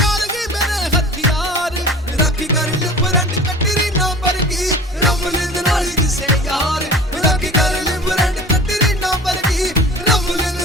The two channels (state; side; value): normal; both; correlation 0.41